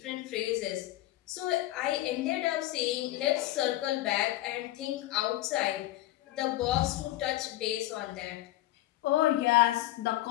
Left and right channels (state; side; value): quieter; right; 15.6 dB